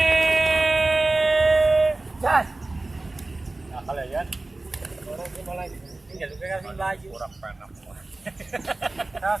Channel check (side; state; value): left; quieter; 3.0 dB